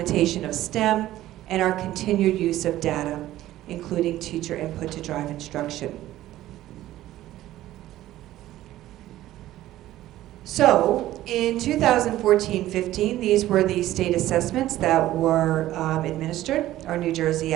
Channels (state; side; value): quieter; left; 14.6 dB